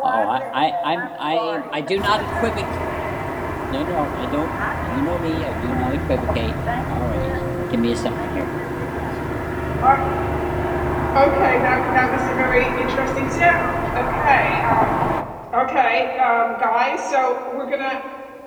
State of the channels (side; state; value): both; identical; correlation 1.00